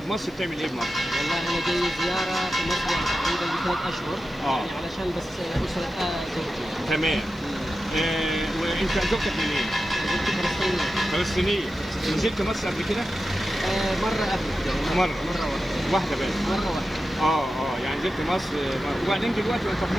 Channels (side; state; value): right; noise; hiss, 29 dB below the sound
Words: بتعمل ايه بمصر؟ والله انا جاي زياره في مصر يعني تقريبا ب3 اشهر. يعني علشان بس اسره زوجتي. تمام. وانت زوجتك منين؟ زوجتي فلسطينيه. فلسطينيه. نزلت مصر قبل كده؟ مره قبل كده. مره واحده بس. مره واحده. يعني نزلت مصر وبعدين دلوقتي انت في